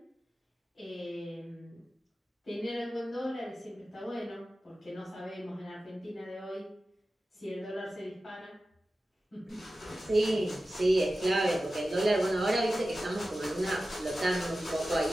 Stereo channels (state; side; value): normal; both; correlation 0.94